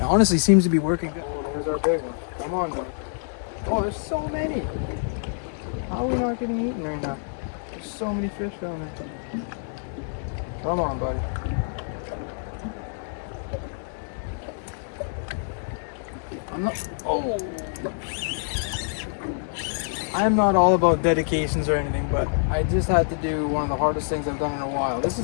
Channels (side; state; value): right; silent; digital silence